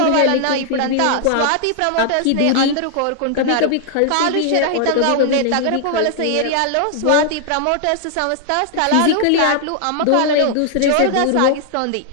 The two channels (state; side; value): different; both; correlation 0.00